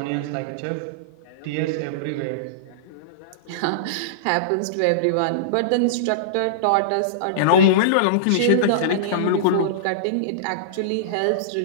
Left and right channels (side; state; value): both; different; correlation -0.04